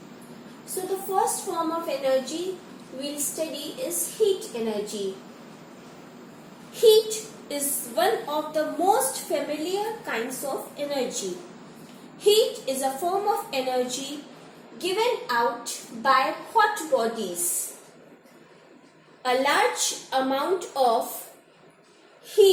So the first form of energy we'll study is heat energy. Heat is one of the most familiar kinds of energy. Heat is a form of energy given out by hot bodies. A large amount of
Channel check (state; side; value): identical; both; correlation 1.00